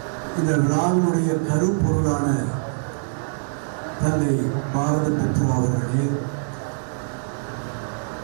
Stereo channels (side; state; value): left; silent; digital silence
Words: இந்த விழாவினுடைய கருப்பொருளான தந்தை பாரத புத்ரா அவர்களே,